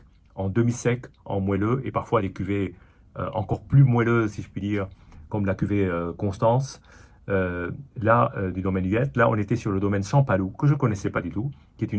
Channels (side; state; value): both; identical; correlation 1.00